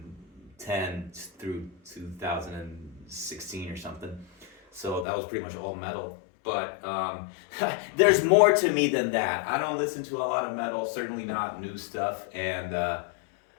through 2016 or something. So that was pretty much all metal. But there's more to me than that. I don't listen to a lot of metal, certainly not new stuff. And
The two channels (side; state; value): right; drops out; at 5.1 s